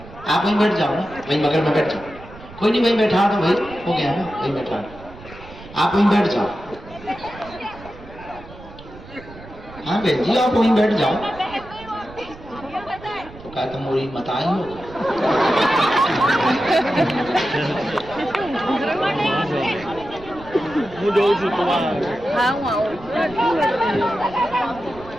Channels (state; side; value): noise; right; rumble, 18 dB below the sound